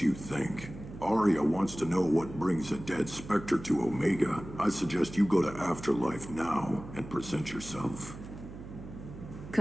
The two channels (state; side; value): noise; right; hum, 13 dB below the sound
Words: think. Arya wants to know what brings a dead Spectre to Omega. I suggest you go to Afterlife now and present yourself.